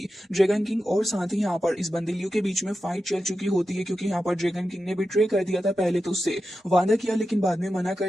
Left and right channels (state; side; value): normal; both; correlation 0.91